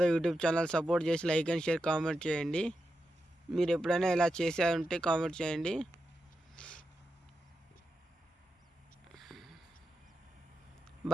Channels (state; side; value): normal; both; correlation 0.88